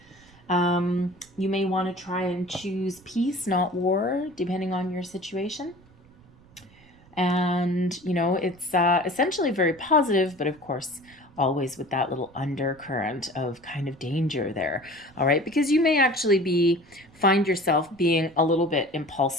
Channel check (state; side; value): noise; right; rumble, 27 dB below the sound